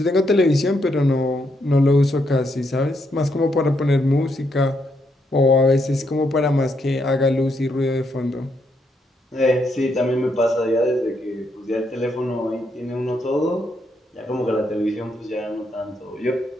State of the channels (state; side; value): normal; both; correlation 0.78